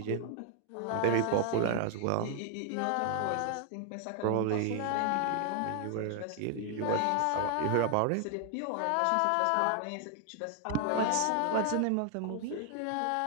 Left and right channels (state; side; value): different; both; correlation 0.00